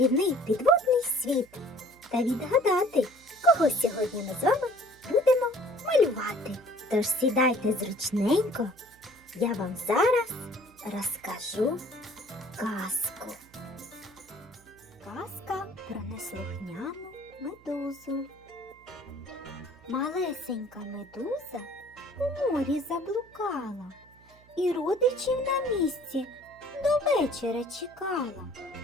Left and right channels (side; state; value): right; noise; hum, 27 dB below the sound